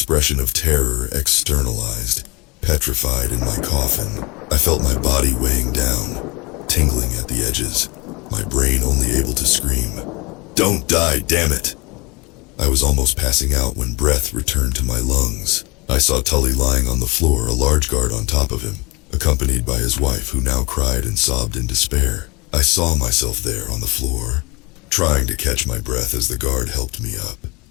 of terror externalized, petrified in my coffin. I felt my body weighing down, tingling at the edges, my brain only able to scream, "Don't die, damn it!" I was almost passing out when breath returned to my lungs. I saw Tully lying on the floor, a large guard on top of him, accompanied by his wife, who now cried and sobbed in despair. I saw myself there on the floor, trying to catch my breath as the guard helped me up.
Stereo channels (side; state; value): right; quieter; 26.5 dB